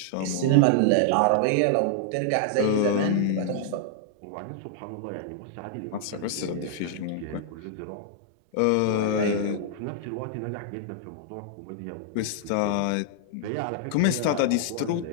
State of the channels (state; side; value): different; both; correlation -0.01